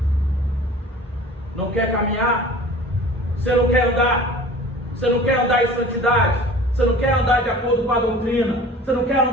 Não quer caminhar? Você não quer andar? Você não quer andar em santidade? Você não quer andar de acordo com a doutrina? Você não quer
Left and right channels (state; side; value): normal; both; correlation 0.43